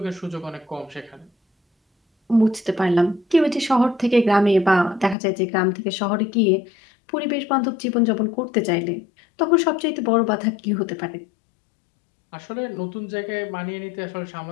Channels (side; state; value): right; drops out; at 5.2 s